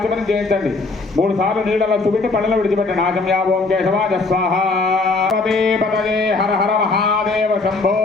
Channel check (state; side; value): quieter; right; 3.7 dB